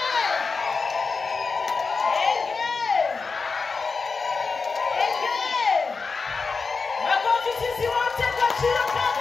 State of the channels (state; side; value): quieter; right; 4.6 dB